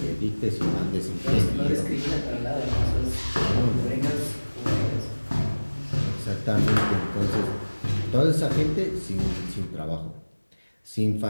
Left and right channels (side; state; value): both; inverted; correlation -1.00